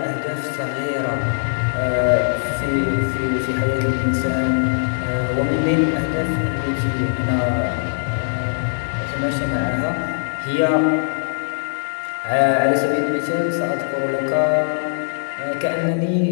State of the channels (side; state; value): right; silent; 58 dB below the other